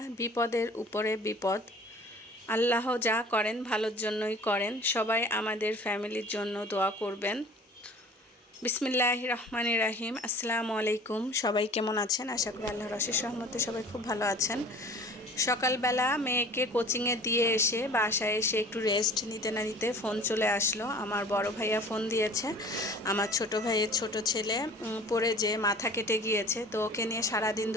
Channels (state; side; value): normal; both; correlation 0.46